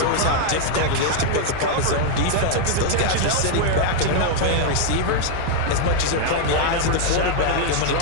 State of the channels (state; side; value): different; both; correlation 0.00